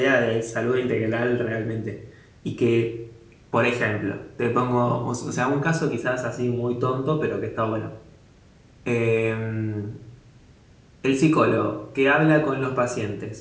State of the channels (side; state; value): both; identical; correlation 1.00